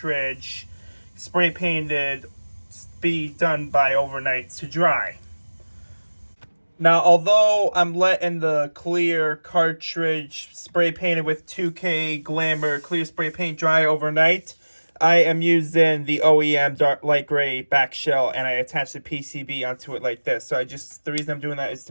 spray painted be done by overnight to dry. Now, although I'm letting the clear cartridge spray painted with 2K Glamour clear spray paint dry overnight, I am using the OEM dark light gray back shell, and I attach the PCB onto it like this. So the reason I'm doing that is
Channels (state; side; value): inverted; both; correlation -1.00